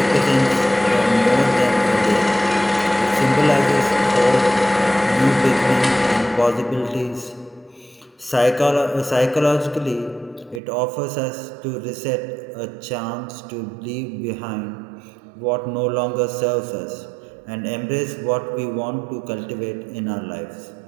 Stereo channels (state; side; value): drops out; left; at 10.6 s